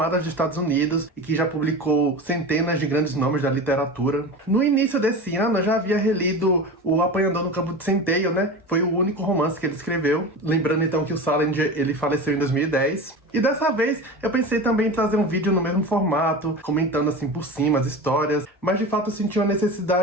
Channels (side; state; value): both; normal; correlation 0.29